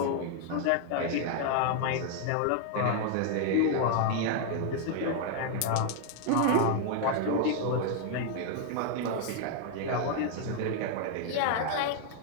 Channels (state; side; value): different; both; correlation 0.00